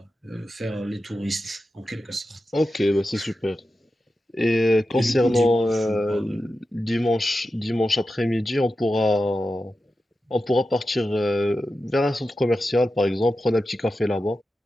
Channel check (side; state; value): both; normal; correlation 0.91